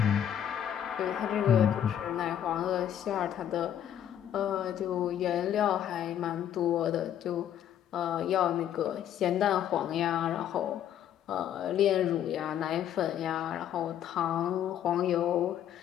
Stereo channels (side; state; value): right; quieter; 10.3 dB